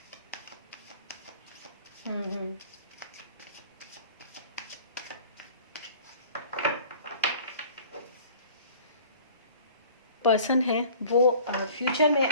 हम्म। पर्सन है वो फ्यूचर में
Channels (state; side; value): inverted; both; correlation -0.48